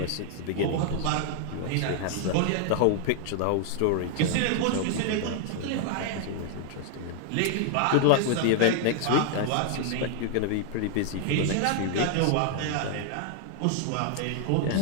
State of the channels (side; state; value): both; different; correlation 0.00